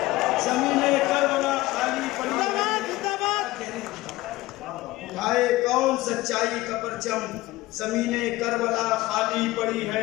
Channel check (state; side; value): quieter; right; 18.4 dB